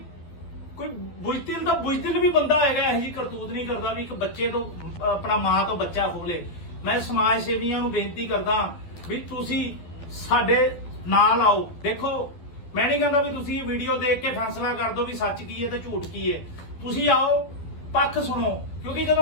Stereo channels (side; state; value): right; late; 12 ms